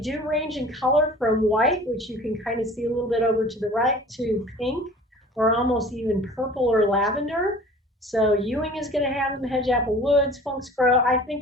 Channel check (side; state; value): both; normal; correlation 0.45